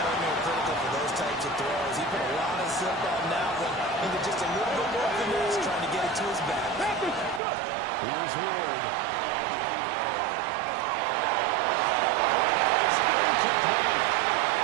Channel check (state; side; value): drops out; left; at 7.4 s